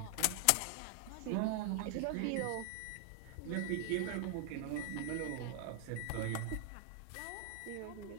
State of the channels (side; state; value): both; different; correlation 0.00